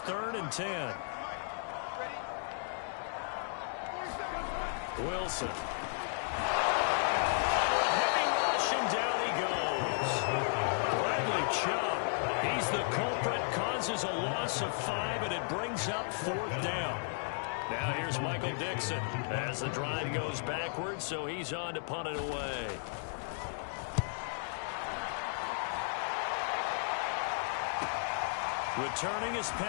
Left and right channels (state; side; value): silent; right; digital silence